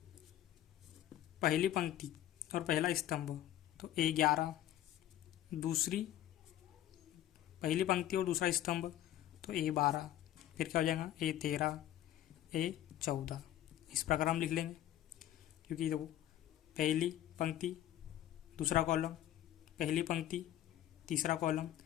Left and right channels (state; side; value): quieter; right; 12.6 dB